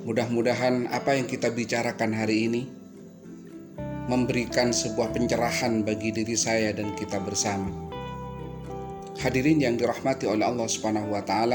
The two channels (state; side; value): identical; both; correlation 1.00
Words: Mudah-mudahan apa yang kita bicarakan hari ini memberikan sebuah pencerahan bagi diri saya dan kita bersama. Hadirin yang dirahmati oleh Allah Subhanahu wa